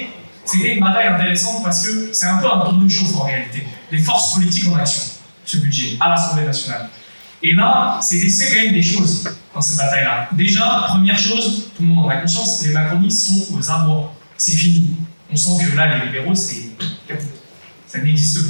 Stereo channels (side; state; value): both; inverted; correlation -1.00